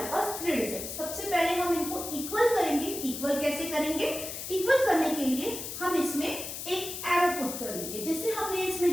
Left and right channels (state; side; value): noise; left; hiss, 7 dB below the sound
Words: पास 3 डिजिट्स। सबसे पहले हम इनको इक्वल करेंगे। इक्वल कैसे करेंगे? इक्वल करने के लिए हम इसमें एक एरो पुट कर देंगे, जिससे हमने इसमें